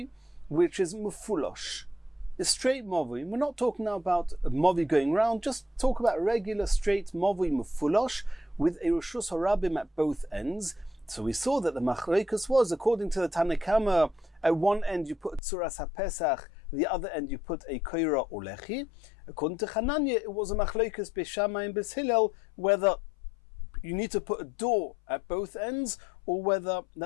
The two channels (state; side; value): drops out; right; at 15.4 s